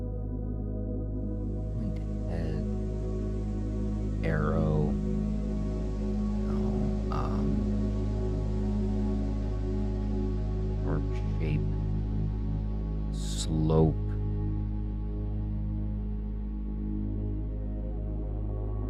Arrow. Arc shape. Slope.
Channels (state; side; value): identical; both; correlation 1.00